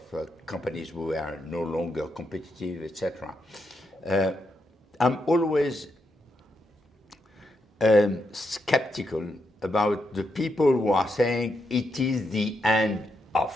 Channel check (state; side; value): normal; both; correlation 0.81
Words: companies who are no longer competitive, etc. I'm always skeptical about the people who are saying it is the end of.